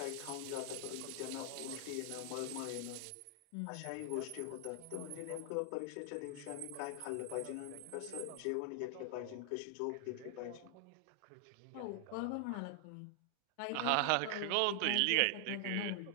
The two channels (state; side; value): different; both; correlation 0.00